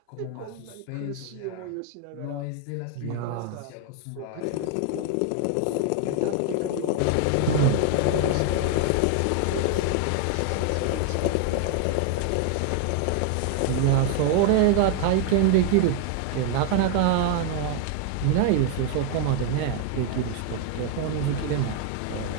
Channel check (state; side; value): different; both; correlation 0.00